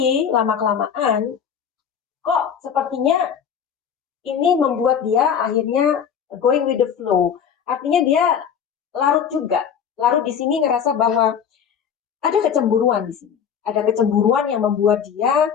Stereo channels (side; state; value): right; quieter; 7.7 dB